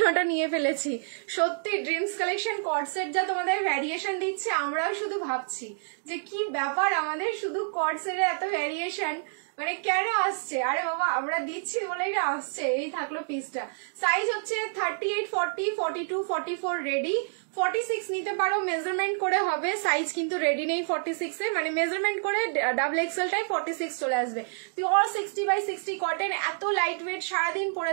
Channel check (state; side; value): silent; left; digital silence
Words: নিয়ে ফেলেছি। সত্যি ড্রিমস কালেকশন কট সেট যা তোমাদের ভ্যারিয়েশন দিচ্ছে, আমরাও শুধু ভাবছি যে কি ব্যাপার, আমাদের শুধু কট সেটে এত ভ্যারিয়েশন মানে কেন আসছে? আরে বাবা, আমরা দিচ্ছি বলেই না আসছে। এই থাকলো পিসটা। সাইজ হচ্ছে 38, 40, 42, 44 রেডি। 46 নিতে পারো, মেজারমেন্ট করে হবে। সাইজ কিন্তু রেডি নেই 46 এ, মানে মেজারমেন্ট করে ডাবল এক্সেলটাই 46 চলে আসবে। পিওর 60x60 কটন, এত লাইট ওয়েট, সারাদিন